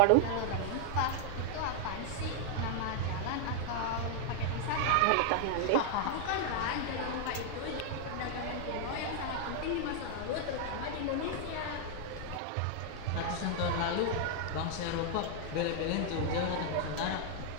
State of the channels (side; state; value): both; different; correlation 0.00